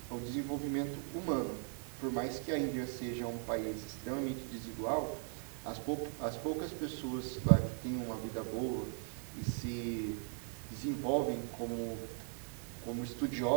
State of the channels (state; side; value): silent; left; 52 dB below the other